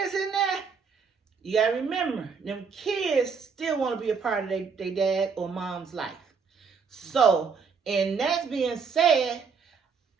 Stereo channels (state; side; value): quieter; left; 5.7 dB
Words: in there, you gotta remember, them kids still want to be a part of their dad or mom's life. So, and that's being said,